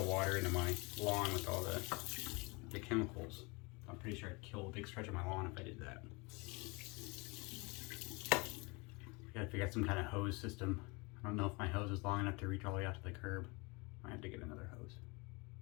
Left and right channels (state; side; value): quieter; right; 27.7 dB